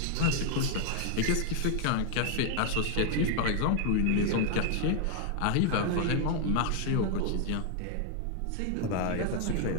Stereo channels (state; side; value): different; both; correlation 0.00